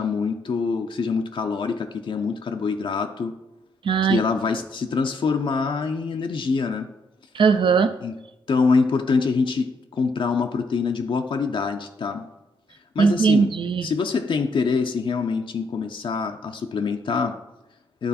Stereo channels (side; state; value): both; normal; correlation 0.72